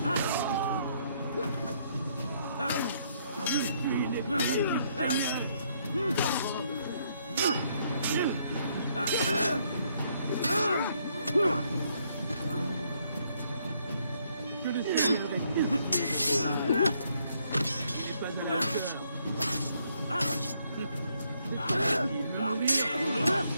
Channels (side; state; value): both; inverted; correlation -0.71